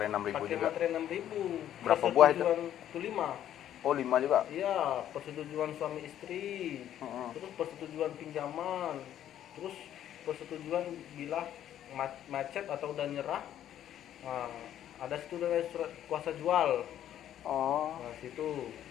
6.000 Pakai juga. materai 6.000. Berapa buah itu? Itu 5. Oh 5 juga. Iya, persetujuan suami istri. Terus persetujuan pinjaman. Terus persetujuan bila macet atau udah nyerah. Nah, ada situ dari surat kuasa jual. Oh. Nah, situ.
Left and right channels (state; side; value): quieter; right; 11.1 dB